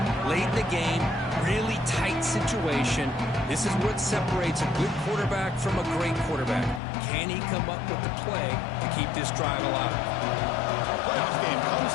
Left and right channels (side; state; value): right; drops out; at 6.8 s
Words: Late in the game, really tight situation. This is what separates a good quarterback from a great quarterback. Can he come up with the play to keep this drive alive? Playoff game